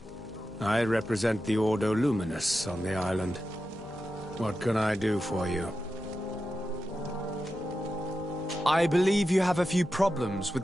I represent the Ordo Luminous on the island. What can I do for you? I believe you have a few problems with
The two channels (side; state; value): both; normal; correlation 0.90